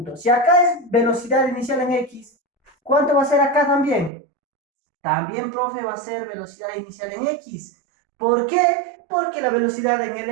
si acá es velocidad inicial en X, ¿cuánto va a ser acá también? También, profe, va a ser velocidad inicial en X. ¿Por qué? Porque la velocidad en el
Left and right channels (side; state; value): left; drops out; at 4.1 s